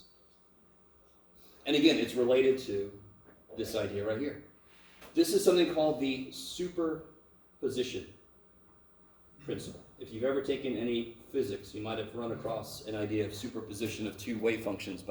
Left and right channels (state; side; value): identical; both; correlation 1.00